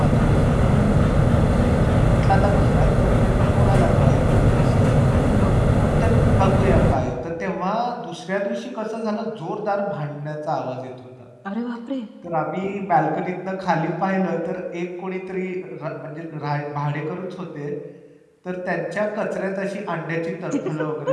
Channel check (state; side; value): identical; both; correlation 1.00